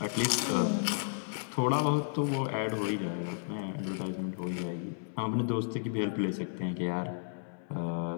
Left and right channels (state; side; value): silent; right; digital silence